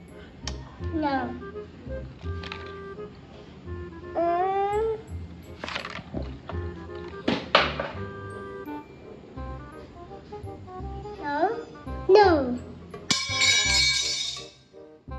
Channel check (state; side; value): identical; both; correlation 1.00